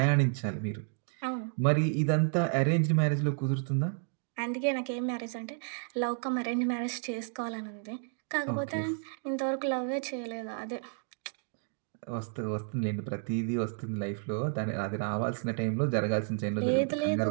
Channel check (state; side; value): silent; left; 57 dB below the other